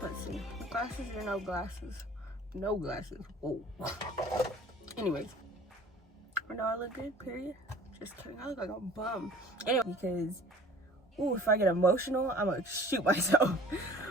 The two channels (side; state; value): both; normal; correlation 0.47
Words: Let's see. Glasses or no glasses? No glasses. Oh. Anyways. I know I look good, period. Just kidding, I look like a bum. Anyway, because, ooh, if I get emotional, I'm gonna shoot myself.